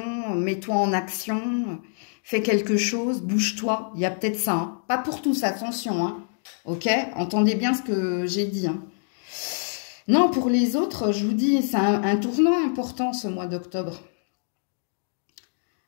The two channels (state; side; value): silent; right; digital silence